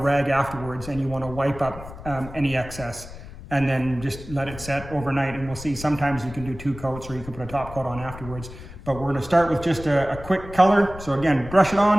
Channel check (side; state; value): left; noise; rumble, 14 dB below the sound